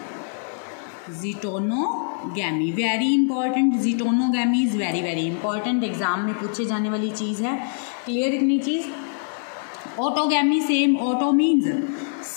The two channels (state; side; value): silent; right; 57 dB below the other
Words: Zytonogamy very important. Zytonogamy is very important. Exam में पूछे जाने वाली चीज है. क्लियर इतनी चीज. Autogamy same. ऑटो